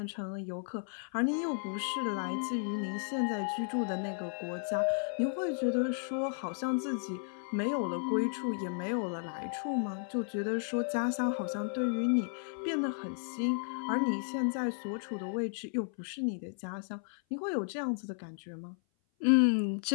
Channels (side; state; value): right; silent; 55 dB below the other